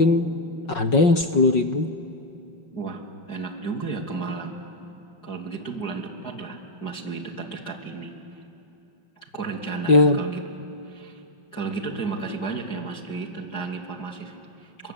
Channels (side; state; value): right; late; 5.5 ms